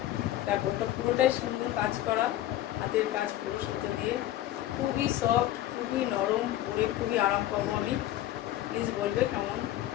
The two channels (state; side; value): quieter; right; 13.7 dB